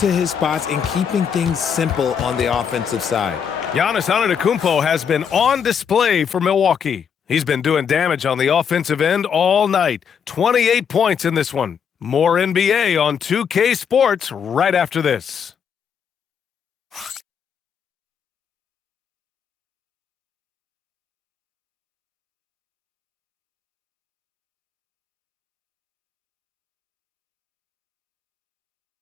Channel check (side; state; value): right; quieter; 7.3 dB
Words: his spots and keeping things simple on the offensive side. Giannis ANTETO has been on display for Milwaukee. He's been doing damage on the offensive end all night. 28 points in this one. More NBA on 2K Sports right after this.